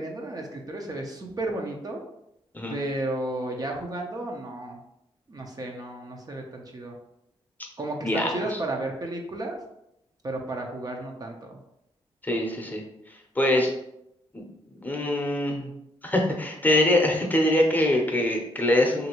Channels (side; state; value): both; normal; correlation 0.68